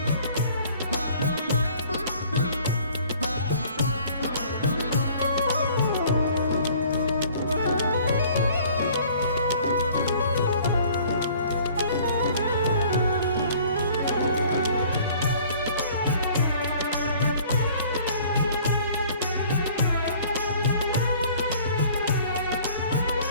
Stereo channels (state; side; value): inverted; both; correlation -0.53